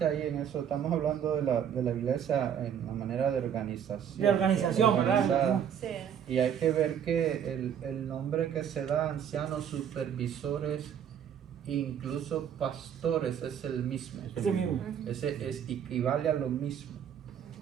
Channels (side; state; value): left; quieter; 8.7 dB